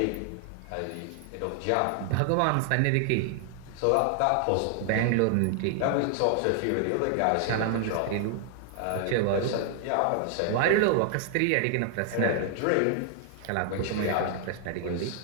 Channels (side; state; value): both; different; correlation 0.00